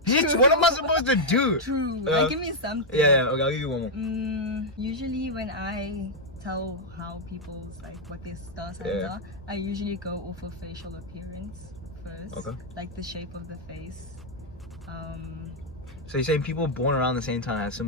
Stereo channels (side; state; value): both; normal; correlation -0.03